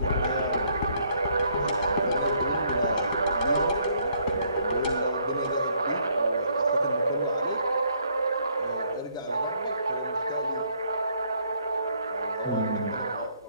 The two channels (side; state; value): both; inverted; correlation -0.68